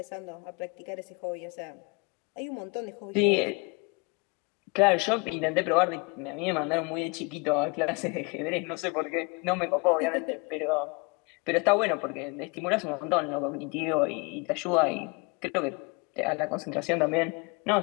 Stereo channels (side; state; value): right; quieter; 29.5 dB